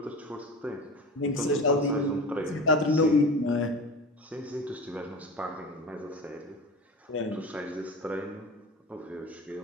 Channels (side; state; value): both; normal; correlation 0.32